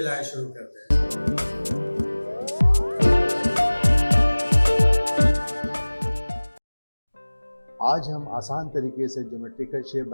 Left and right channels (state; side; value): inverted; both; correlation -1.00